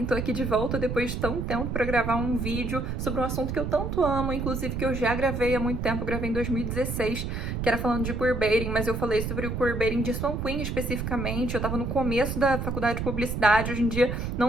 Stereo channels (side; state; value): right; noise; rumble, 3 dB below the sound